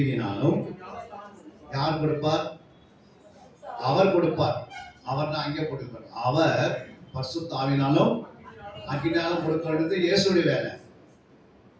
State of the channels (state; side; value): identical; both; correlation 1.00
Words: யார் கொடுப்பார், அவர் கொடுப்பார். அவர் தான் அங்கே போட்டுப்பார். அவர் பரிசுத்த ஆவியினாலும் அக்கினியினாலும் கொடுக்கிறது இயேசுடைய வேலை.